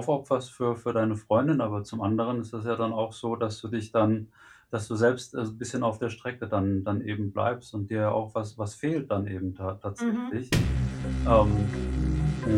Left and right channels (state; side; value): identical; both; correlation 1.00